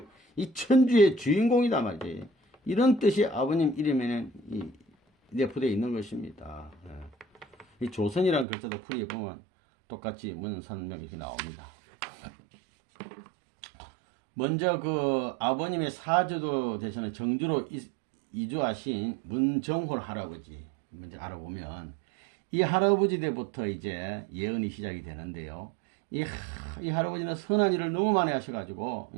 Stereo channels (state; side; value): drops out; left; at 8.5 s